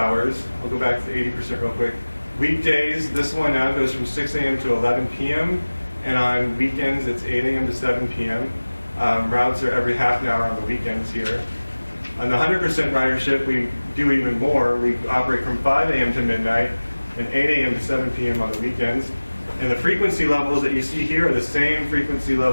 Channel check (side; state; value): both; inverted; correlation -1.00